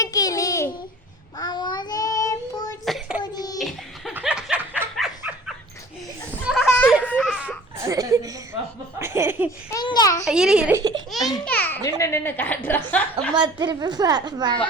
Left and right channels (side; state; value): both; normal; correlation 0.46